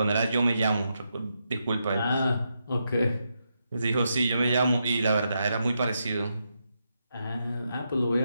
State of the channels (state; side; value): inverted; both; correlation -0.83